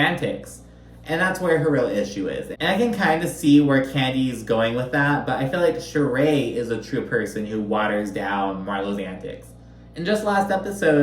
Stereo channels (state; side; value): identical; both; correlation 1.00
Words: And that's where her real issue is. And I can kind of see where Kandi's going with that, but I feel like Shereé is a true person who waters down Marlo's antics. In just last